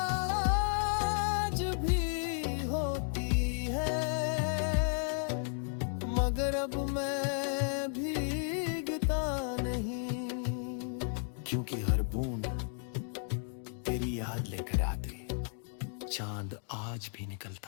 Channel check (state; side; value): silent; right; 55 dB below the other